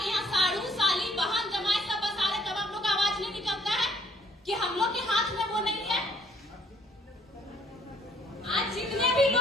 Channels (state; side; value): normal; both; correlation 0.63